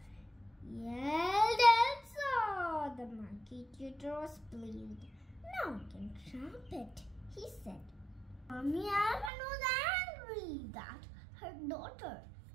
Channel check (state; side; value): drops out; left; at 9.3 s